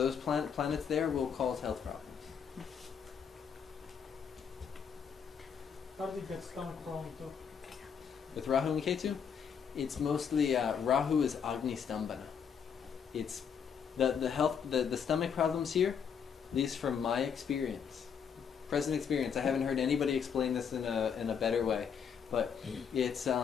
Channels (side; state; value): right; quieter; 7.1 dB